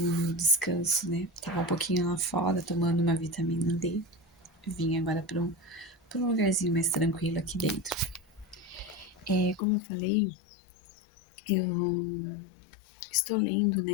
no meu descanso, né? Tava um pouquinho lá fora tomando uma vitamina D. Vim agora pra um lugarzinho mais tranquilo aqui dentro. Como eu falei, eu estou lendo,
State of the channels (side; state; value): right; drops out; at 9.6 s